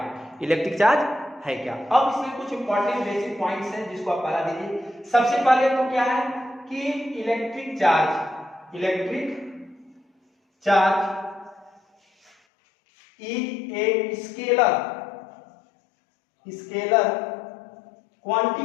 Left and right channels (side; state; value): right; drops out; at 12.3 s